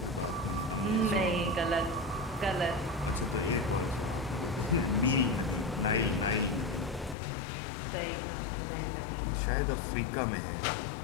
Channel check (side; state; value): right; drops out; at 7.2 s